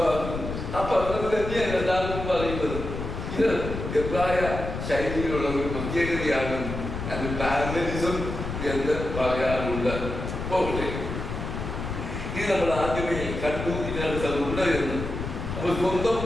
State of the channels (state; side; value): noise; left; rumble, 5 dB below the sound